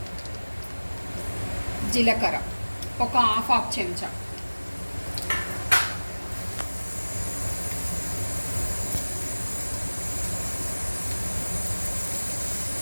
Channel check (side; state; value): both; inverted; correlation -1.00